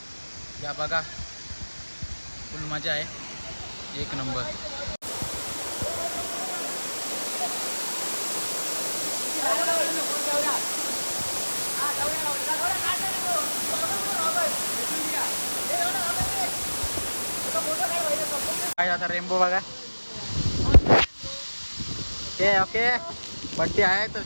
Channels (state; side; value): inverted; both; correlation -1.00